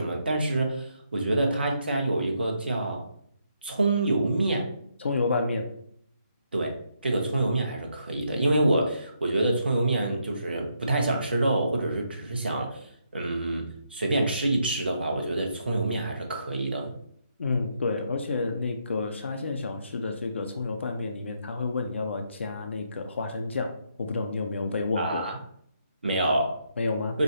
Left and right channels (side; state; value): both; inverted; correlation -0.77